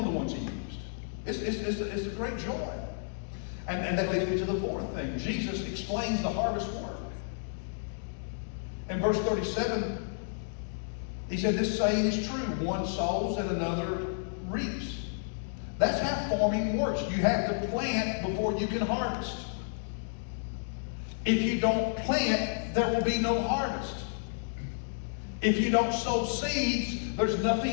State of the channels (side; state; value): right; silent; digital silence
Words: the ones he used. It's a great joy. And that leads me to the fourth thing. Jesus explains the harvest work. In verse 37, he said, this saying is true. One sows and another reaps. That's how farming works. You have to plant before you can harvest. If you don't plant, there will be no harvest. If you don't sow seeds, there's